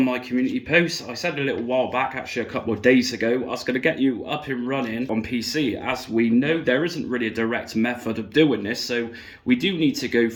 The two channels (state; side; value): identical; both; correlation 1.00